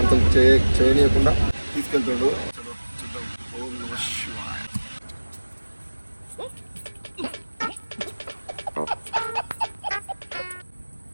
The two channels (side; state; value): both; inverted; correlation -1.00